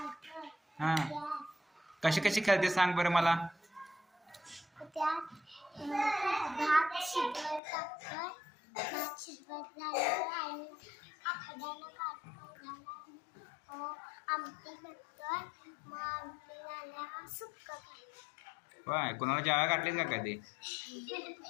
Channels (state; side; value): drops out; right; at 7.6 s